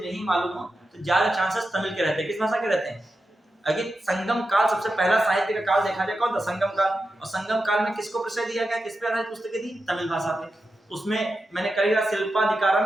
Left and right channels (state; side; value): normal; both; correlation 0.89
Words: नहीं मालूम हो तो ज्यादा चांसेस तमिल के रहते हैं। किस भाषा के रहते हैं? अगर संगम काल सबसे पहला साहित्य का काल देखा जाए कौन था? संगम काल। और संगम काल में किसको प्रश्रय दिया गया? किस पे आधारित पुस्तकें थी? तमिल भाषा पे। उसमें मैंने करेगा